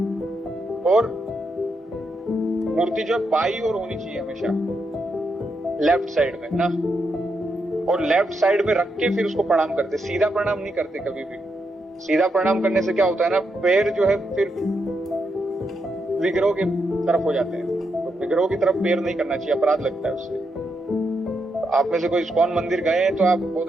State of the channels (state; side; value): normal; both; correlation 0.82